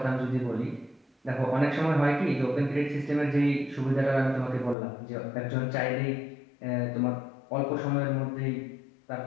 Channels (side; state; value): right; drops out; at 4.8 s